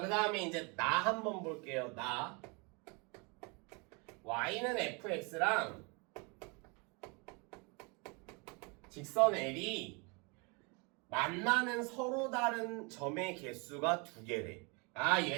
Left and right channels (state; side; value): quieter; left; 31.0 dB